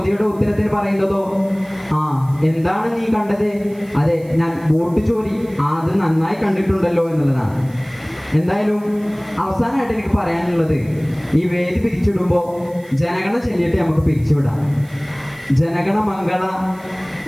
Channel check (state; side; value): noise; right; hiss, 27 dB below the sound